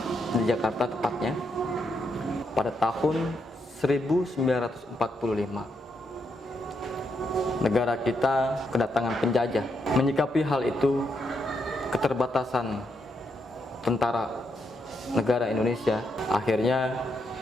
di Jakarta tepatnya pada tahun 1945. Negara kita kedatangan penjajah. Menyikapi hal itu, keterbatasan tentara negara Indonesia, akhirnya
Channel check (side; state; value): both; normal; correlation 0.80